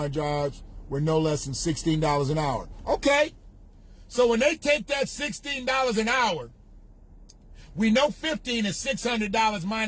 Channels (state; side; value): identical; both; correlation 1.00